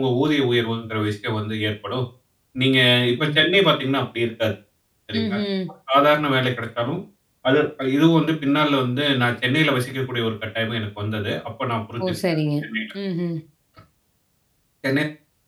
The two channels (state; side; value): identical; both; correlation 1.00